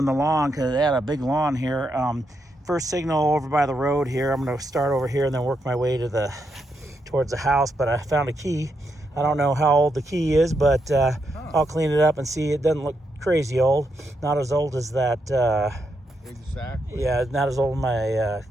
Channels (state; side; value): normal; both; correlation 0.81